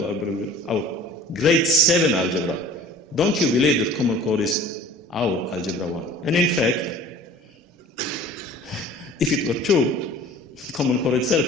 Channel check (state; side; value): normal; both; correlation 0.46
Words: our grade 7 algebra. Don't you believe that Common Core is our algebra 1? And in fact, if it were true, Common Core itself